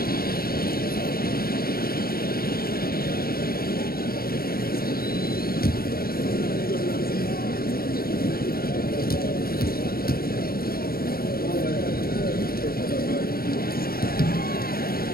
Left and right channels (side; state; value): right; late; 0.44 ms